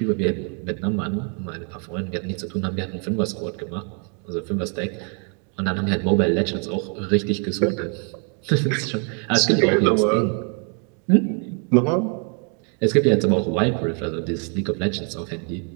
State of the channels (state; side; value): quieter; left; 39.6 dB